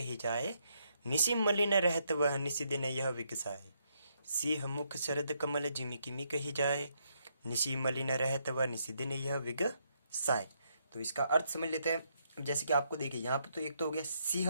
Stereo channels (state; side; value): inverted; both; correlation -0.76